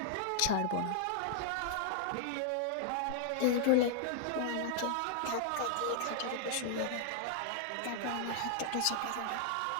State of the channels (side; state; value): both; different; correlation -0.01